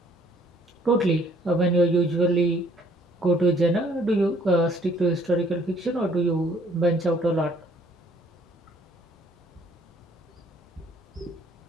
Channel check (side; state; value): both; normal; correlation 0.62